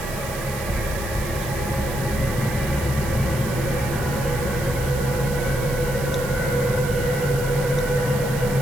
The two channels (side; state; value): right; noise; hiss, 11 dB below the sound